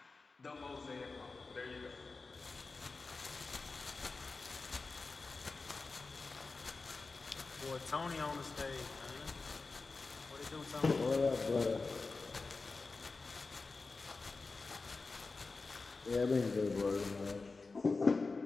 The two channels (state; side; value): quieter; right; 3.9 dB